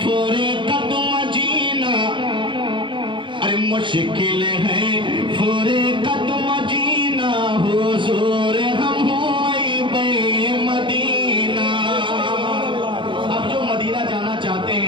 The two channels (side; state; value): left; late; 0.24 ms